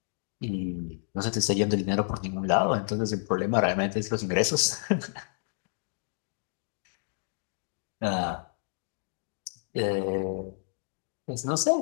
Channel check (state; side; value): silent; right; digital silence